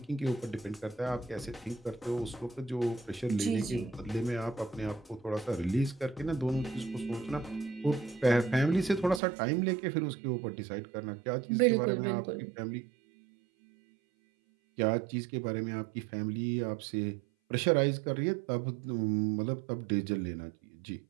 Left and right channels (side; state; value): left; drops out; at 9.2 s